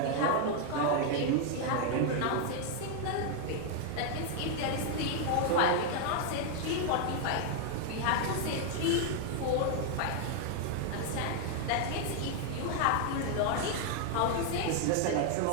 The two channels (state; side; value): different; both; correlation 0.00